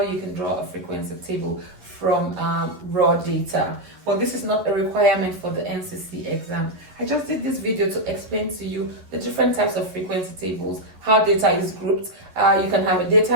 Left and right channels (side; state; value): left; late; 11 ms